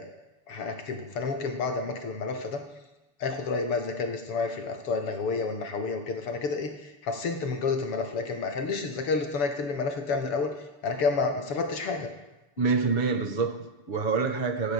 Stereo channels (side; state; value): right; late; 6.9 ms